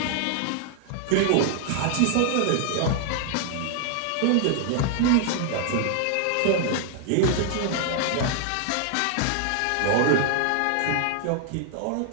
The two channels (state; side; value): different; both; correlation 0.00